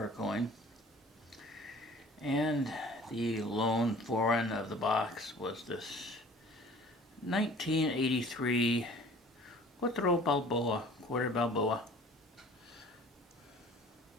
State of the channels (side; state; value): both; normal; correlation 0.48